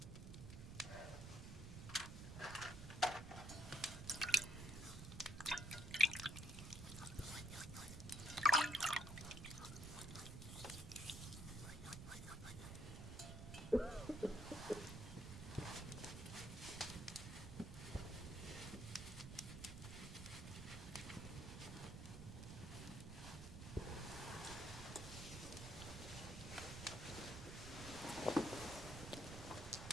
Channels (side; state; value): right; noise; rumble, 8 dB below the sound